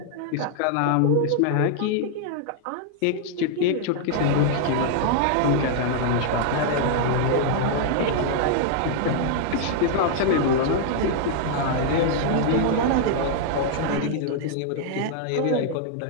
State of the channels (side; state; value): both; different; correlation -0.01